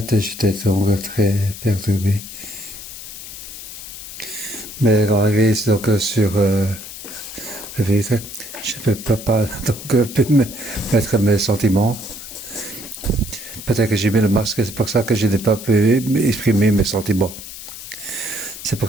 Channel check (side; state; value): left; noise; hiss, 12 dB below the sound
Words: j'étais donc très perturbé. Mais arrivé donc sur le véhicule, je ne peux pas donc mettre mes sentiments. Peut-être que j'ai mis le masque, c'est pour ça que je n'ai pas pu exprimer mes sentiments. C'est